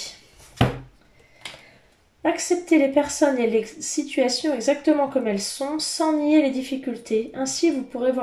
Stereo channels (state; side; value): identical; both; correlation 1.00